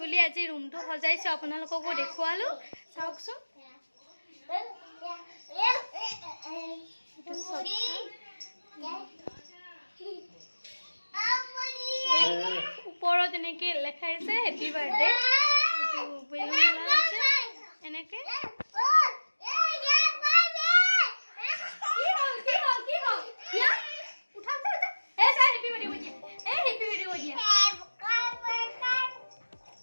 বুলি আজি ৰুমটো সজাইছো, আপোনালোককো দেখুৱালো। চাওকচোন ওপৰত এনেকে লেখা আছে হেপি বাৰ্থডে। এনেকে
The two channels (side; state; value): both; inverted; correlation -1.00